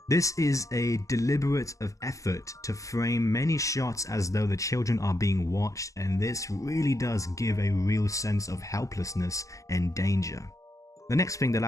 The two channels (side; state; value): right; late; 0.16 ms